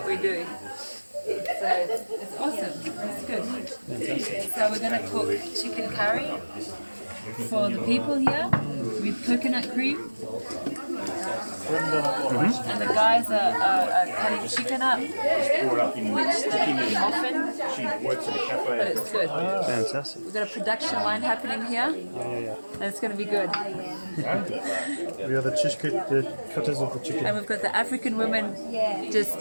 we do. So it's awesome. It's good. So we're going to cook chicken curry for the people here with coconut cream. And the guys are cutting chicken up, which they eat often, but it's good. Fantastic. We've got a production line happening here, and it's going to be good. We are the cutters of the chicken. And we've got the African women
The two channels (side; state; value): both; inverted; correlation -1.00